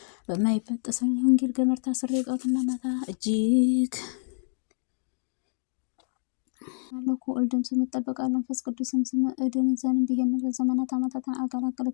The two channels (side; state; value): right; silent; digital silence